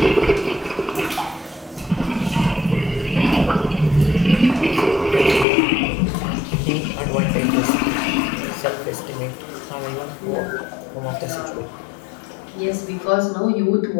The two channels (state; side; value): drops out; right; at 5.5 s